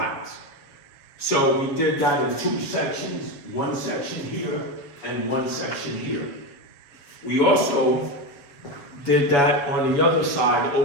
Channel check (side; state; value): right; late; 7.1 ms